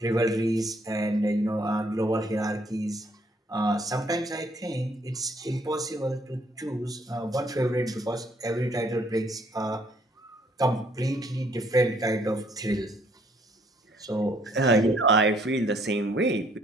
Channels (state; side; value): normal; both; correlation 0.65